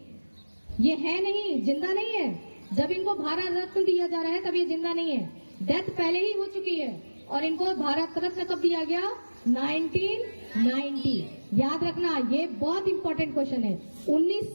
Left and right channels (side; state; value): both; inverted; correlation -1.00